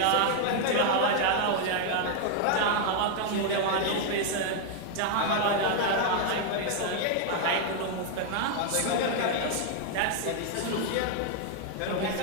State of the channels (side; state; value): both; different; correlation 0.00